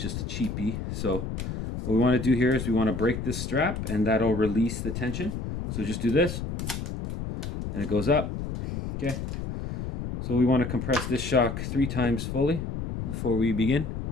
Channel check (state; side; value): noise; left; rumble, 5 dB below the sound